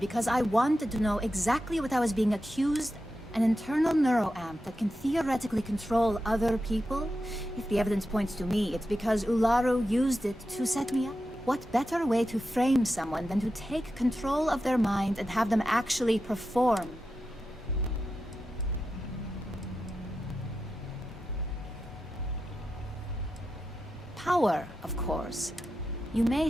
I wanted to know exactly what I was being accused. An internal neuroamp that can theoretically control other people? If the evidence points to me, it's because Ularu used it to set me up. What better way to frame someone than to take control of their mind and have them actually perform? Power, of course. You may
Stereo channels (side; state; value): both; normal; correlation 0.90